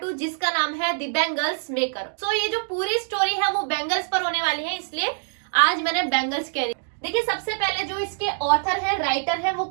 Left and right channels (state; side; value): silent; left; digital silence